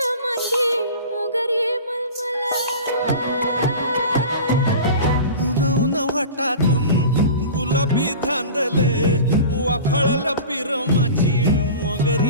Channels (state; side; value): inverted; both; correlation -0.36